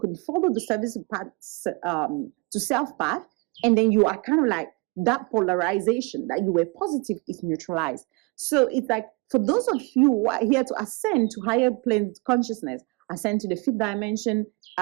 follow the service path to self path, and then you are kind of like that polarization that you were positive is neutralized. So it's like, for those of you who are here to ascend to higher plane consciousness, ascend to the fifth dimension,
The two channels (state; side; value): quieter; left; 28.3 dB